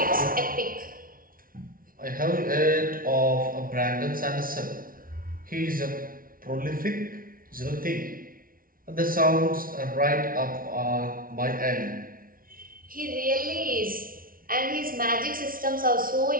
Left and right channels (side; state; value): left; late; 0.42 ms